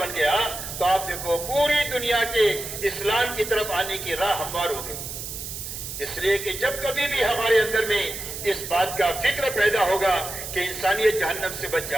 گیا تو آپ دیکھو پوری دنیا کے اسلام کی طرف آنے کی راہ ہموار ہو گئی. اس لیے کہ جب کبھی بھی ہمارے اندر میں اس بات کا فکر پیدا ہوگا کہ انسانیت جہنم سے بچ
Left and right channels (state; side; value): noise; right; hiss, 8 dB below the sound